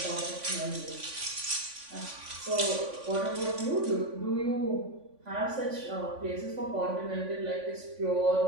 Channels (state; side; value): late; left; 3.5 ms